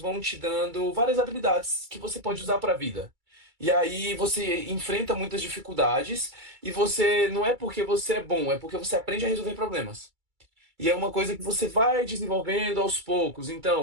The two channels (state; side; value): late; left; 2.3 ms